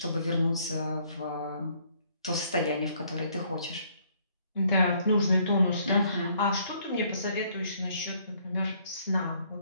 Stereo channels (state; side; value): inverted; both; correlation -0.65